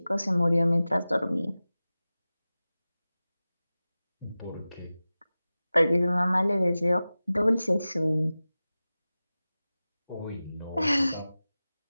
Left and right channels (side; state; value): both; inverted; correlation -0.96